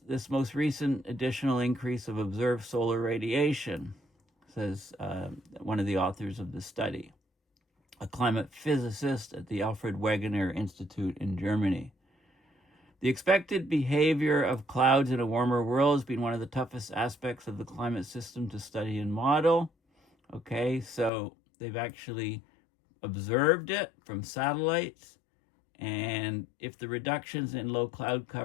this most recent additional increase of observed solar radiation, says one of the authors of the study, a climate physicist at the Alfred Wegener Institute in Germany. The expected behavior of clouds in a warmer world has been one of the toughest aspects of the climate system to study and model. Okay, so they've actually observed it from satellites. And if the reductions in low cloud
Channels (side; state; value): right; drops out; at 21.1 s